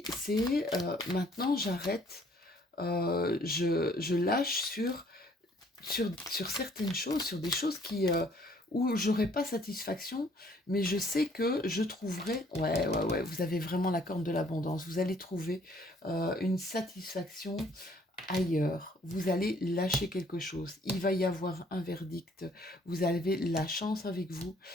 c'est maintenant, j'arrête. Je lâche sur certaines choses, sur des choses où j'aurai pas satisfaction, mais je sais que je trouverai, ouais, vous avez vraiment la corne de l'abondance, vous allez trouver une satisfaction ailleurs, vous allez lâcher quelque chose, il va y avoir un verdict, vous avez la chance avec vous,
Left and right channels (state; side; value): normal; both; correlation 0.61